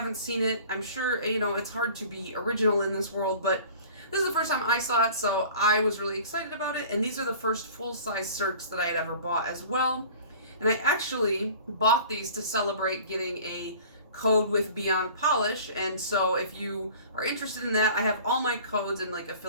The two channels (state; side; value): inverted; both; correlation -0.45